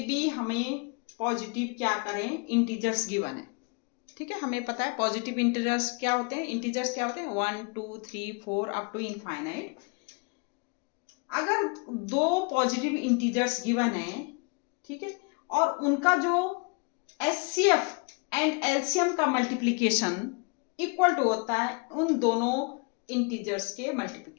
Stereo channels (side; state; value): right; quieter; 32.8 dB